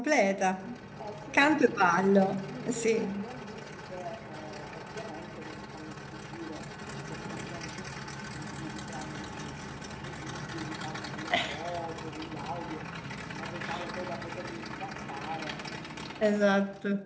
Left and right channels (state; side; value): identical; both; correlation 1.00